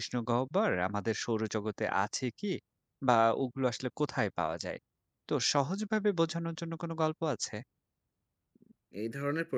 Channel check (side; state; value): both; identical; correlation 1.00